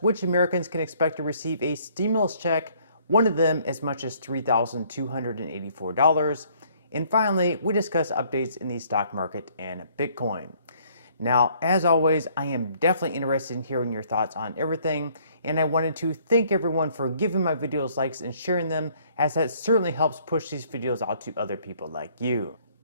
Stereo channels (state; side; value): inverted; both; correlation -0.62